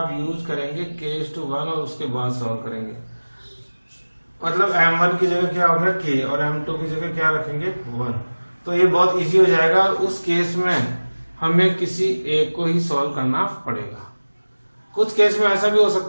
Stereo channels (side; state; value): both; inverted; correlation -1.00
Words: यूज करेंगे k:1 और उसके बाद सॉल्व करेंगे। मतलब M1 की जगह क्या होगा k और M2 की जगह क्या रखेंगे 1। तो ये बहुत इजी हो जाएगा। उस केस में हमें किसी एक को ही सॉल्व करना पड़ेगा। कुछ केस में ऐसा भी हो